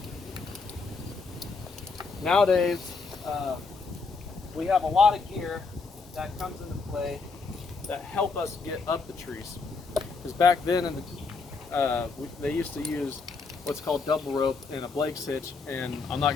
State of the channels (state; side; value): quieter; right; 4.5 dB